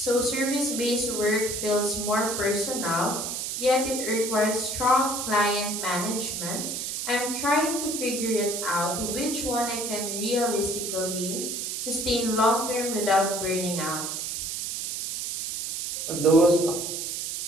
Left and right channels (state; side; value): noise; right; hiss, 3 dB below the sound